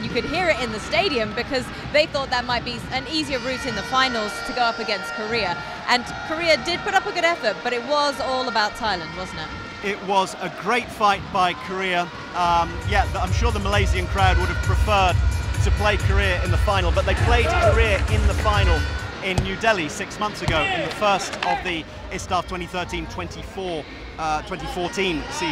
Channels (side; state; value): both; identical; correlation 1.00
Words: you could hear it in the stadium because they thought that might be an easier route in the finals to go up against Korea. And Korea did put up a good effort, but it was all about Thailand, wasn't it? It was a great fight by Korea. Yeah, I'm sure the Malaysian crowd would have preferred to play Korea in the final, but they played Korea in the final in New Delhi 6 months ago in the first of the ISTAF 2013-2014